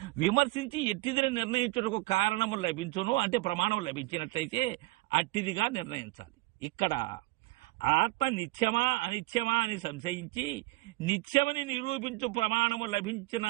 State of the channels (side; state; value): left; quieter; 21.6 dB